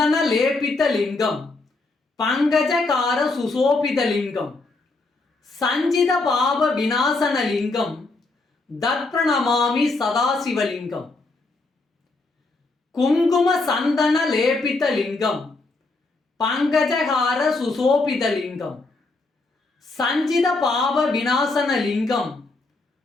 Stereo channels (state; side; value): quieter; right; 3.4 dB